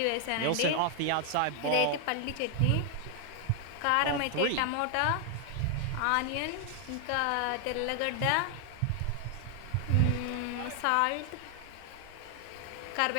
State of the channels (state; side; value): different; both; correlation 0.00